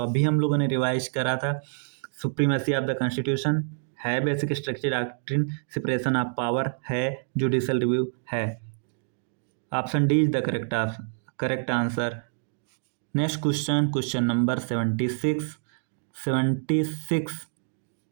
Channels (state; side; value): silent; left; digital silence